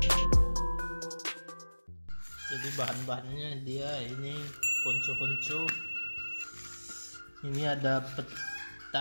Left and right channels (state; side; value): inverted; both; correlation -1.00